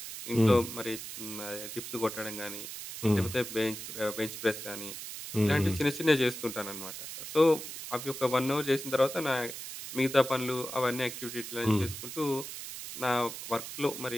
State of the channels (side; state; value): right; noise; hiss, 9 dB below the sound